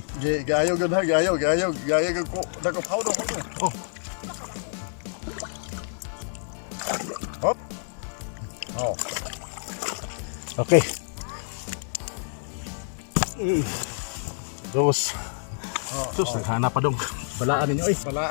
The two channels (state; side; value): silent; right; digital silence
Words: Giayaw gud ha, giayaw gud ko. Dako powder ko. Oh, Hop. Oh. okay. Dos. Oh. Sus, naghanap pa dong. Balaan ninyo eh.